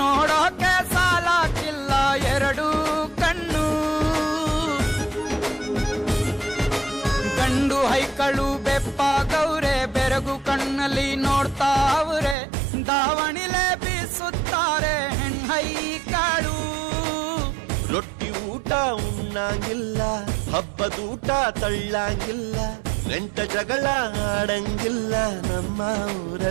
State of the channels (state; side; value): drops out; left; at 12.4 s